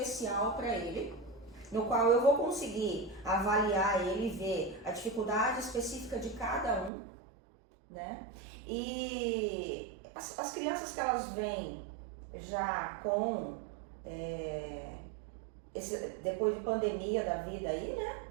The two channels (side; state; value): left; drops out; at 6.9 s